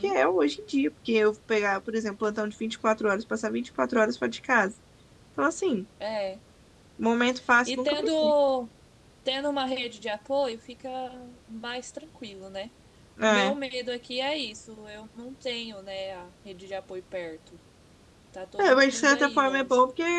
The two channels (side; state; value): both; identical; correlation 1.00